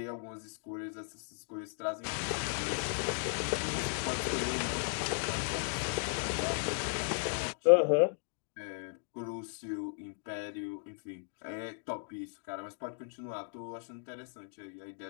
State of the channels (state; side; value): silent; right; digital silence